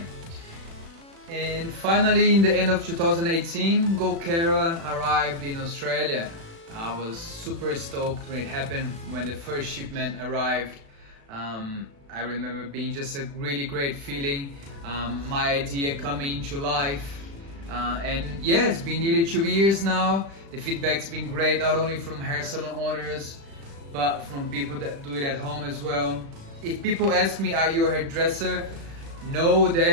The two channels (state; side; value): late; left; 36 ms